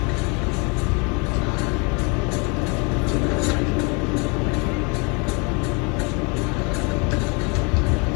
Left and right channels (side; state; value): right; quieter; 31.6 dB